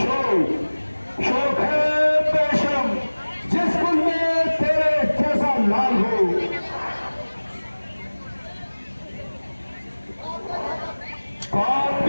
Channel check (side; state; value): both; inverted; correlation -1.00